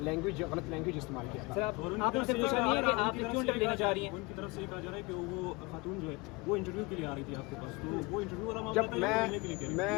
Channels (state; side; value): quieter; right; 26.0 dB